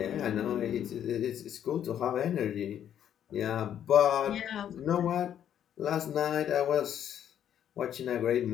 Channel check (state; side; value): quieter; right; 9.9 dB